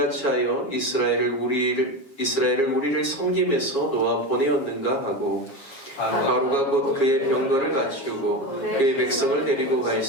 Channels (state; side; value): late; right; 7.3 ms